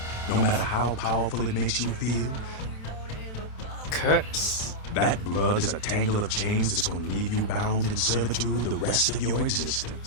No matter how powerful it makes you feel. Curse? That blood is a tangle of chains that's gonna leave you bound in servitude the rest of your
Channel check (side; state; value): right; late; 27 ms